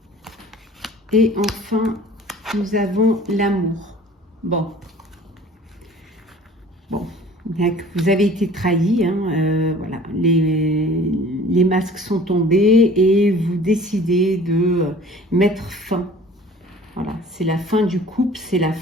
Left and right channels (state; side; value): normal; both; correlation 0.47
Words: Et enfin, nous avons l'amour. Bon, vous avez été trahi, hein, voilà, les masques sont tombés et vous décidez de mettre fin. Voilà, c'est la fin du couple, c'est la